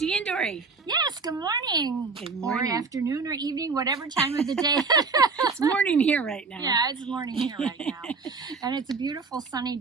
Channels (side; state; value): left; quieter; 4.5 dB